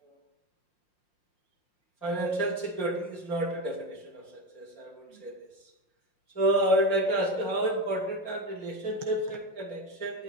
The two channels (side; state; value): right; late; 5.6 ms